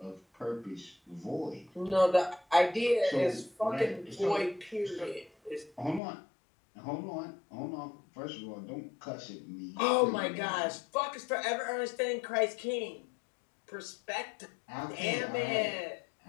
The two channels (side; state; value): right; drops out; at 6.0 s